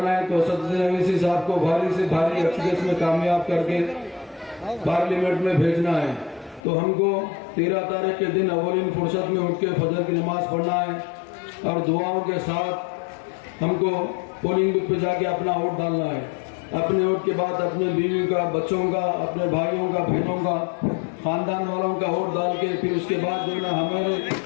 ہے تو اسدالدین اویسی صاحب کو بھاری سے بھاری اکثریت میں کامیاب کر کے پارلیمنٹ میں بھیجنا ہے. تو ہم کو 13 تاریخ کے دن اولین فرصت میں اٹھ کے فجر کی نماز پڑھنا ہے اور دعاؤں کے ساتھ ہم کو پولنگ بوتھ پہ جا کے اپنا ووٹ ڈالنا ہے. اپنے ووٹ کے بعد اپنے بیوی کا, بچوں کا, اپنے بھائیوں کا, بہنوں کا, خاندان والوں کا ووٹ ڈال کے پھر اس کے بعد جو ہے نا ہمارے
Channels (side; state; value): right; drops out; at 6.6 s